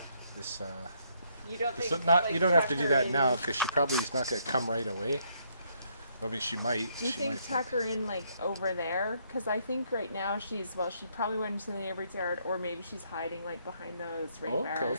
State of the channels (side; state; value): both; inverted; correlation -0.71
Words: This You don't think. so not like, you don't have to tuck do her that in- now because she probably is not going to come right away. I mean, she might. Do you she think might tuck her in like over there? Because I think right now she probably went into the neighbor's yard, or maybe she's hiding like behind those rain Okay.